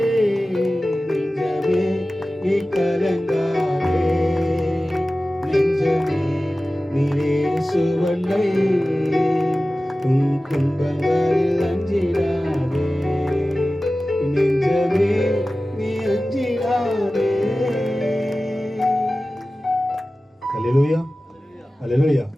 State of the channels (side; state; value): both; normal; correlation 0.96